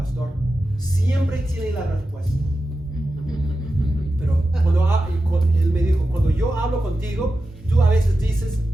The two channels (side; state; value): both; normal; correlation 0.92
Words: siempre tiene la respuesta. Pero él me dijo, cuando yo hablo contigo, tú a veces dices,